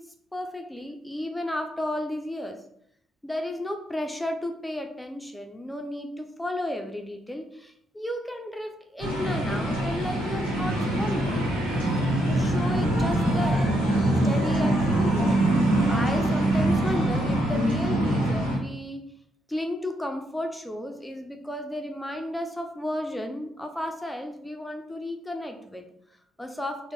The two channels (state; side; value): normal; both; correlation 0.78